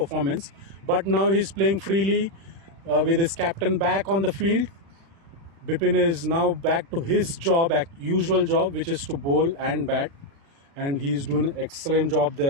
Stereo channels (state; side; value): late; left; 36 ms